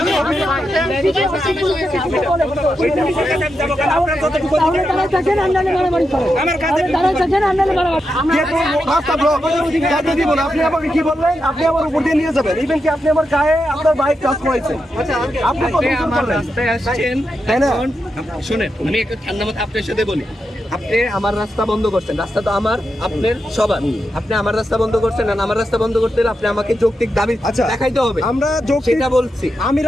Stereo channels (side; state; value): both; normal; correlation 0.86